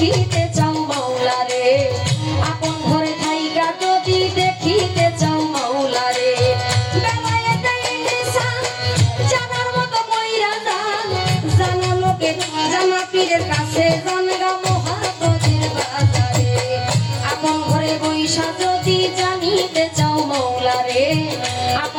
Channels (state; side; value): identical; both; correlation 1.00